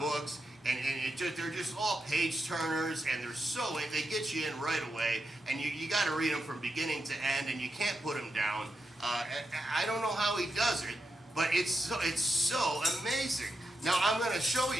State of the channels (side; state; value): both; normal; correlation 0.86